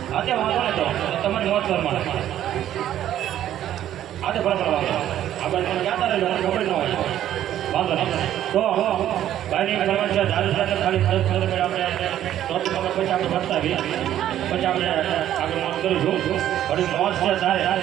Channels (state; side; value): quieter; left; 11.7 dB